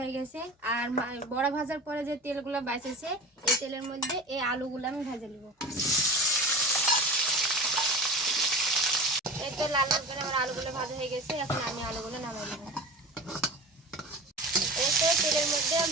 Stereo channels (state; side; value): normal; both; correlation 0.33